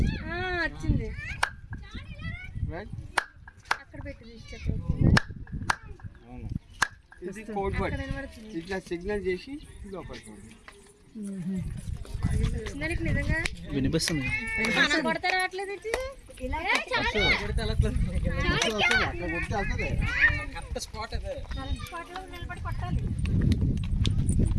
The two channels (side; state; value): both; identical; correlation 1.00